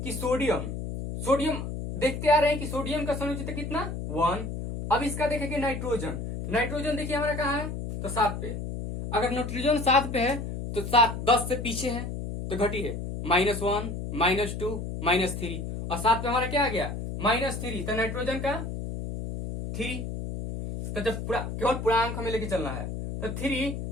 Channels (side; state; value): left; noise; hum, 5 dB below the sound